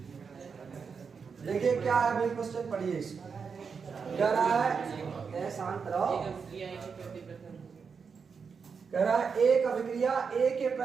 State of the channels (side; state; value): left; quieter; 5.8 dB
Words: देखिए क्या है भाई, क्वेश्चन पढ़िए इसको। क्या रहा है, शांत रहो। कह रहा है एक अभिक्रिया ए के